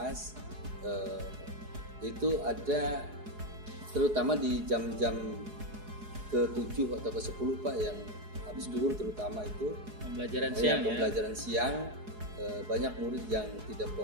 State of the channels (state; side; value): late; left; 4.8 ms